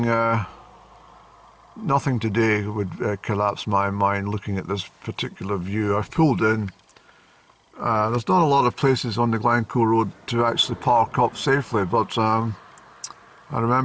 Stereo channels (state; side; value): identical; both; correlation 1.00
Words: today would collapse my mind looking at this particular view. I've pulled in. There's not a lot of places on the Glencoe road to actually park up safely, but I